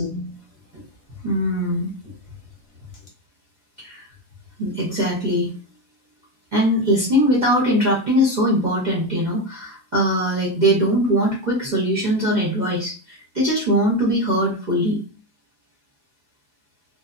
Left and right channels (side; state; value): both; normal; correlation 0.14